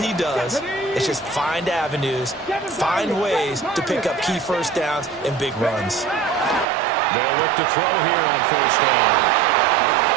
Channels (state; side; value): drops out; left; at 6.7 s